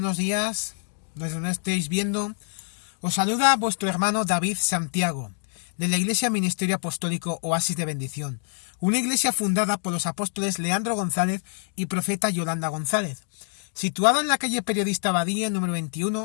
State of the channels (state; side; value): silent; right; 61 dB below the other